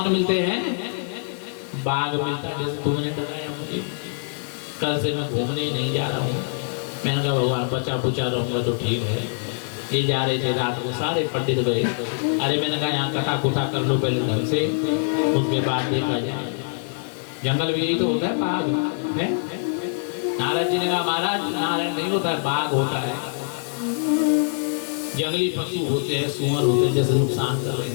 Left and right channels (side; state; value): right; silent; digital silence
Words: मिलते हैं? बाघ मिलता है। जैसे तुमने बताया मुझे, कल से मैं घूमने नहीं जा रहा हूँ। मैंने कहा भगवान बचा बुचा रहूंगा तो ठीक है। ये जा रहे थे रात को, सारे पंडित गए। अरे मैंने कहा यहाँ कथा कुथा कर लो पहले ढंग से, उसके बाद देखा जाए। जंगल में यही तो होता है, बाघ है। नारद जी ने कहा महाराज नारायण नहीं होता है, बाघ होता है। जंगली पशु होते हैं, सुअर होते हैं, जैसे नुकसान कर रहे